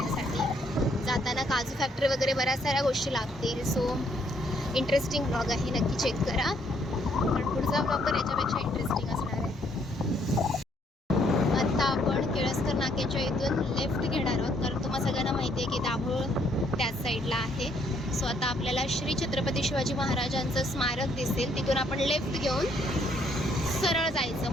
जाताना काजू फॅक्टरी वगैरे बऱ्याच साऱ्या गोष्टी लागतील. सो इंटरेस्टिंग ब्लॉग आहे, नक्की चेक करा. पण पुढचा ब्लॉग तर याच्यापेक्षा इंटरेस्टिंग असणार आहे. आता आपण केळसकर नाक्याच्या इथून लेफ्ट घेणार आहोत, कारण तुम्हाला सगळ्यांना माहिती आहे की दाभोळ त्याच साईडला आहे. सो आता आपल्याला श्री छत्रपती शिवाजी महाराजांचं स्मारक दिसेल, तिथून आपण लेफ्ट घेऊन सरळ जायचं.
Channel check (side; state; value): both; normal; correlation 0.69